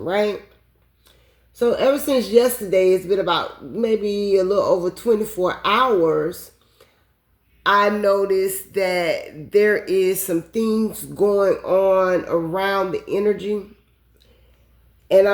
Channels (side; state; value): both; identical; correlation 1.00